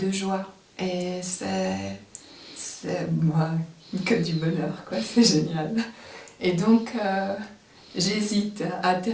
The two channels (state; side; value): identical; both; correlation 1.00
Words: joie. Et c'est moi que du bonheur, quoi. C'est génial. Et donc, j'hésite à